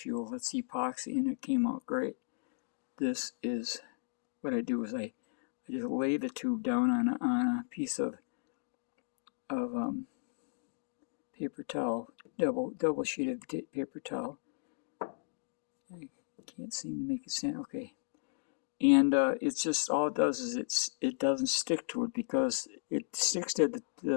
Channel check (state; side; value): silent; right; digital silence